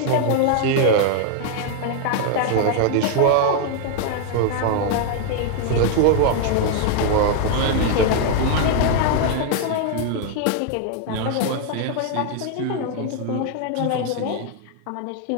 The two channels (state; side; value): different; both; correlation 0.00